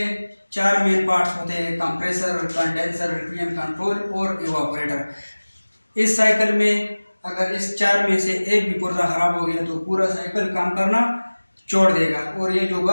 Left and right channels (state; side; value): inverted; both; correlation -1.00